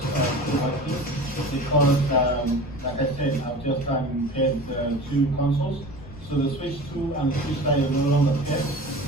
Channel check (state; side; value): noise; left; rumble, 16 dB below the sound